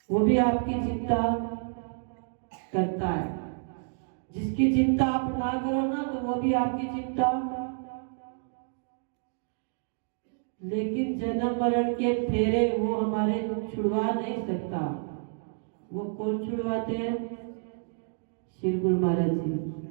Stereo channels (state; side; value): silent; left; digital silence